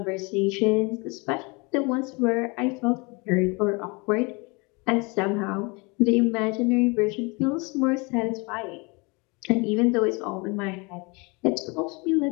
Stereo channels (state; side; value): quieter; right; 28.4 dB